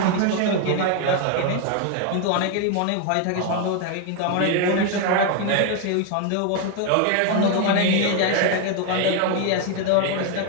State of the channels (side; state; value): both; different; correlation 0.01